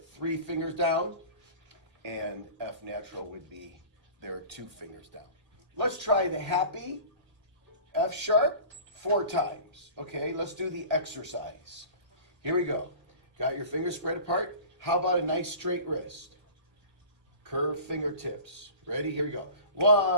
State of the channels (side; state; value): left; late; 2.0 ms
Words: fingers down, and F natural would be their 2 fingers down. Let's try the happy F sharp 4 times. Okay, let's do the exercise. Here we go. Got your fingers spread apart. How about a nice straight wrist? Curved fingertips. Ready? Here we go.